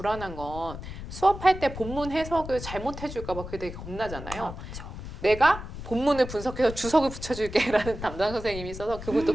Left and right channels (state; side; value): noise; left; rumble, 10 dB below the sound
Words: 건 수업할 때 본문 해석을 잘못해 줄까 봐 그게 되게 겁나잖아요. 그렇죠. 내가 본문을 분석해서 주석을 붙여줄게라는 담당 선생님이 있어서 그분도